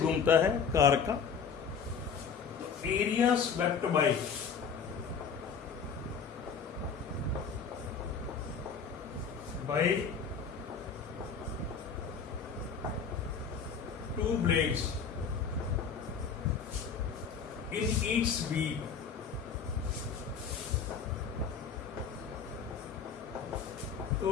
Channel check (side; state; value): right; quieter; 6.2 dB